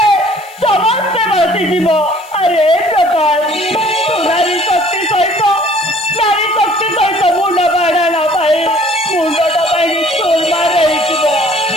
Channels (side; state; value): left; noise; hiss, 23 dB below the sound